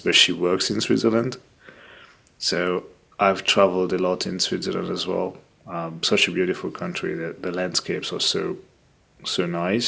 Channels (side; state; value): both; identical; correlation 1.00